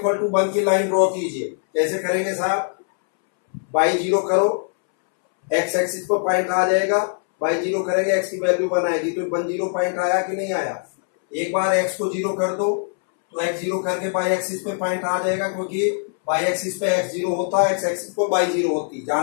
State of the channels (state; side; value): silent; right; 64 dB below the other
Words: to 1 की लाइन ड्रॉ कीजिए। कैसे करेंगे साहब, y 0 करो, x एक्सिस पर पॉइंट आ जाएगा, y 0 करेंगे x की वैल्यू 1 आएगी, तो 1 0 पॉइंट आया कि नहीं आया। एक बार x को 0 कर दो तो x 0 करके y एक्सिस पे पॉइंट आ जाएगा, क्योंकि y एक्सिस पे x 0 होता है, x एक्सिस पे y 0 होती है,